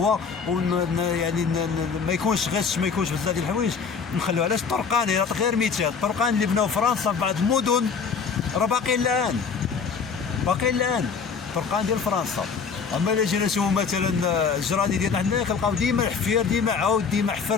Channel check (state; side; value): quieter; right; 5.7 dB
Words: يعني ما يكونش غش، ما يكونش بزاف ديال الحوايج نخليو. علاش الطرقان؟ غير مثال الطرقان اللي بناو فرنسا في بعض المدن راه باقيين الان فرقان ديال فرنسا. اما الا جينا نشوفوا مثلا الجرادي ديالنا حنا كنلقاو ديما الحفير، ديما عاود، ديما